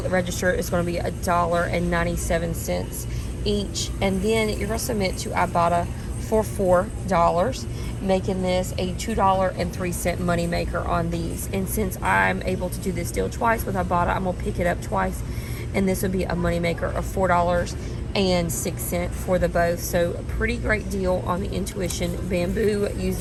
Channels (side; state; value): both; identical; correlation 1.00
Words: the register is going to be $1.97 each. And then you're going to submit to IBOTTA for $4, making this a $2.03 money maker on these. And since I'm able to do this deal twice with IBOTTA, I'm going to pick it up twice. And this would be a money maker of $4.06 for the both. So a pretty great deal on the Intuition Bamboo